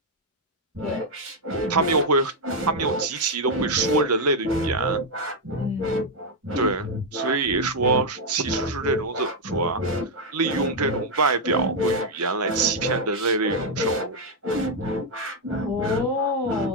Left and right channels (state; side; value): normal; both; correlation 0.00